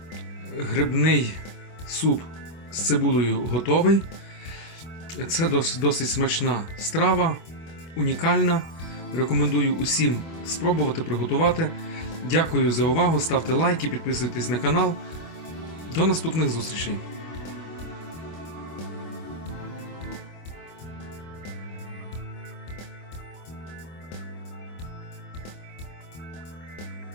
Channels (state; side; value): late; right; 25 ms